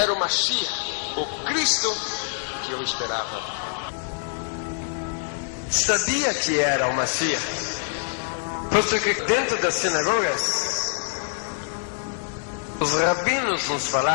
o Mashiach, o Cristo que eu esperava. Sabia que era o Mashiach, posto que dentro das sinagogas, os rabinos nos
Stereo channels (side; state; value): right; silent; 55 dB below the other